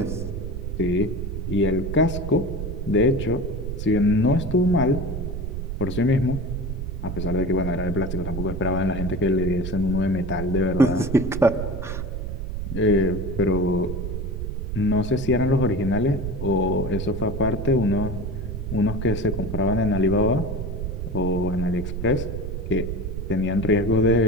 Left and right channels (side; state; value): right; noise; rumble, 5 dB below the sound